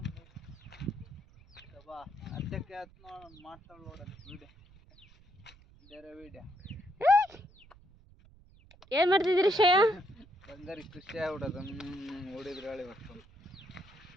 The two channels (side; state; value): right; noise; rumble, 25 dB below the sound